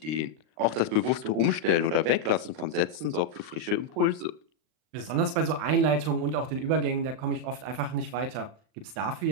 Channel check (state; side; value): late; left; 39 ms